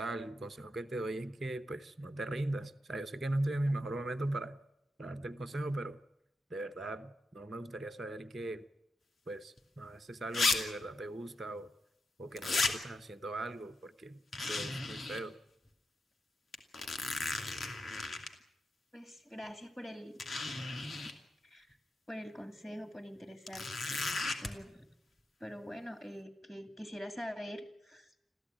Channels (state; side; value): normal; both; correlation 0.86